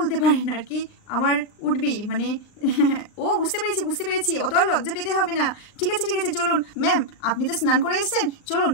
পারেন আর কি, আমার উঠবি মানে ও বুঝতে পেরেছি, অত আর লজ্জা পেতে হবে না। ঠিক আছে চলুন ম্যাম, আপনি তো স্নান করে এসেছেন, চলুন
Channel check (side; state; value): right; late; 39 ms